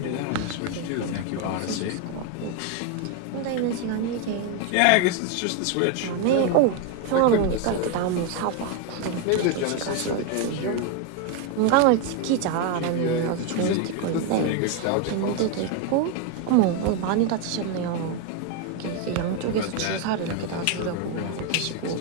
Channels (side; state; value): both; different; correlation 0.02